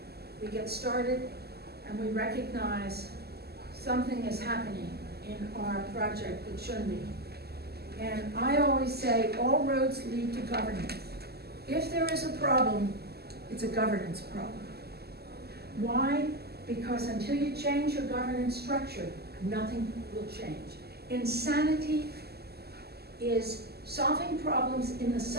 we get started, and we recognize something is happening in our project that shouldn't be. And I always say all roads lead to governance. If there is a problem, it's a governance problem. Why? Because until you change your governance structure, nothing will change. Insanity is solving problems in the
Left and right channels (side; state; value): left; late; 0.46 ms